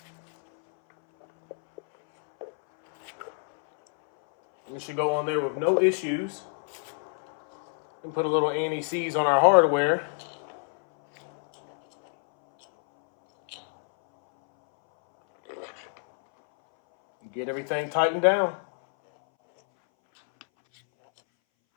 It should go on there with no issues. And put a little anti-seize on our hardware. Get everything tightened down.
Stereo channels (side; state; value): right; silent; 61 dB below the other